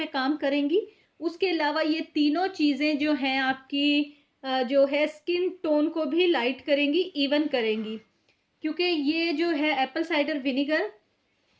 काम करेंगी। उसके अलावा ये तीनों चीज़ें जो हैं आपकी जो है स्किन टोन को भी लाइट करेंगी, इवन करेंगी। क्योंकि ये जो है एप्पल साइडर विनेगर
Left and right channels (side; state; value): both; identical; correlation 1.00